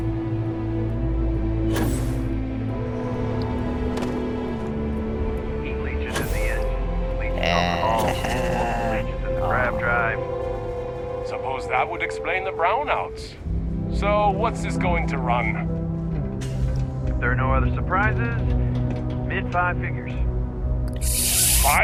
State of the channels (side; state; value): both; identical; correlation 1.00